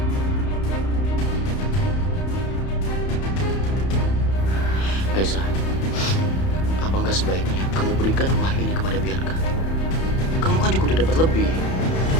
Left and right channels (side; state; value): right; late; 31 ms